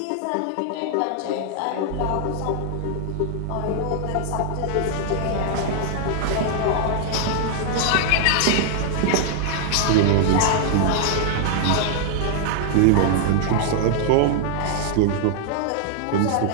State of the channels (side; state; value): both; different; correlation 0.00